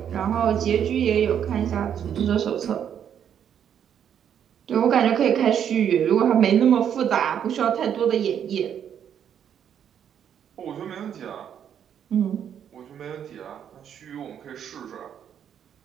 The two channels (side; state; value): left; quieter; 8.9 dB